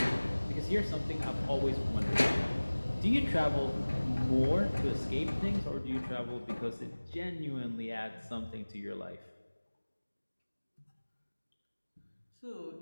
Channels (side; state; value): both; inverted; correlation -1.00